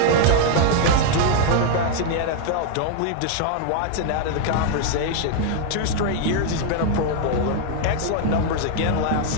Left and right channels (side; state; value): both; different; correlation 0.00